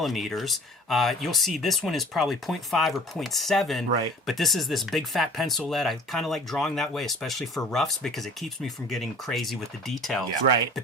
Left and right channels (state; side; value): normal; both; correlation 0.46